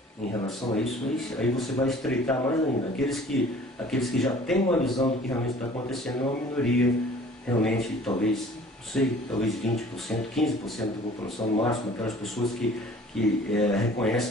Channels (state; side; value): normal; both; correlation 0.50